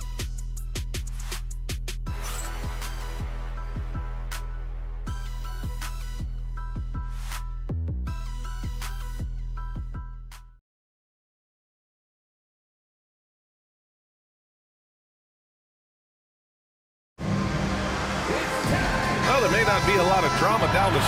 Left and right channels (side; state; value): both; identical; correlation 1.00